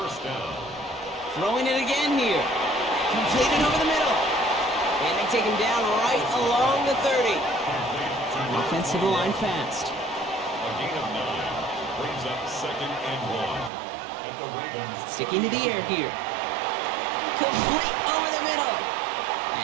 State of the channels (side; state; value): left; drops out; at 13.7 s